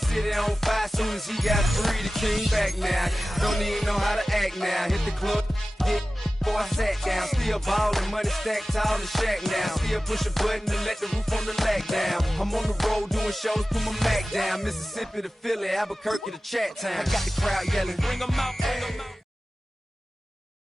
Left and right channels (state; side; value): normal; both; correlation 0.96